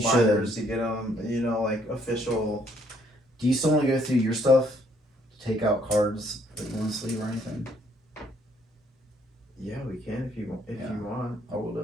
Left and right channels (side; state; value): both; normal; correlation 0.67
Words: should. binders to get them. You know, like official. Do you still want to go through your stuff? To take out cards that you want to sleeve or anything? Yeah, we can if you want. I will